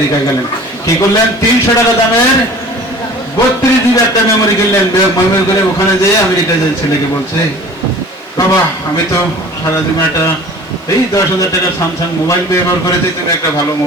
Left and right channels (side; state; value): both; normal; correlation 0.45